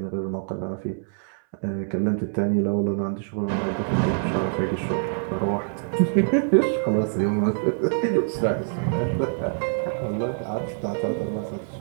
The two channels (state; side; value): silent; left; 62 dB below the other